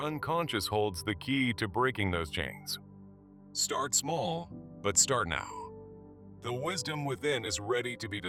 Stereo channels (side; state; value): both; identical; correlation 1.00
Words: unconscious holds the key to breaking those chains. Start small, but start now. The wisdom within is ready to be